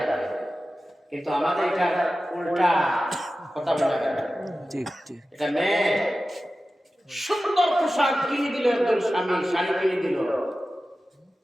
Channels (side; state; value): both; normal; correlation 0.94